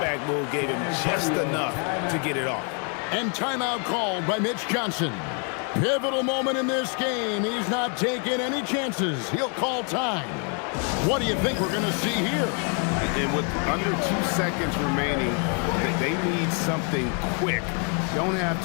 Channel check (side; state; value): right; quieter; 39.3 dB